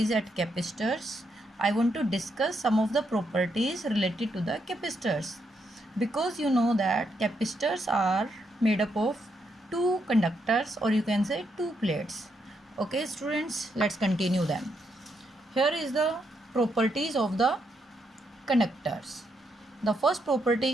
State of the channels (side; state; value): both; normal; correlation 0.79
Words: at capacitors, I want to discuss some of the properties related to the capacitors, because you know that capacitors are made up of two conductors, or you can say two plates. Okay students, let's continue them. Here is the properties of the conductors. The first